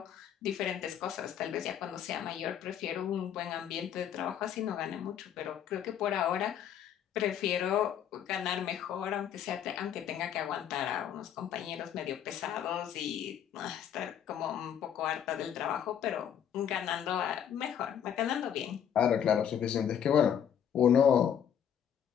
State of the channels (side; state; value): right; quieter; 9.1 dB